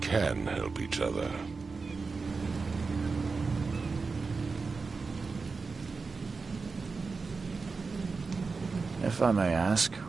can help each other. If I may ask,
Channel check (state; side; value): quieter; left; 4.4 dB